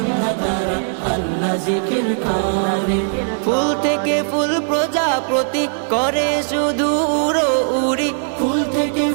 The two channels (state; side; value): silent; left; digital silence